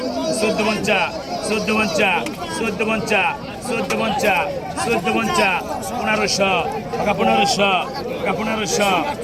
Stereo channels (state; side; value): identical; both; correlation 1.00